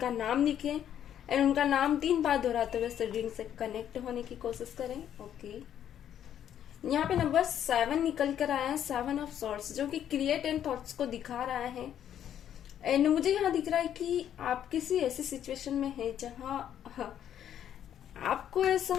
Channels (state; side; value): quieter; right; 10.1 dB